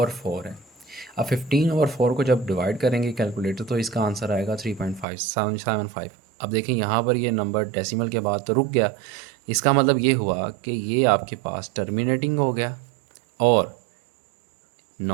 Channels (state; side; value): drops out; left; at 5.1 s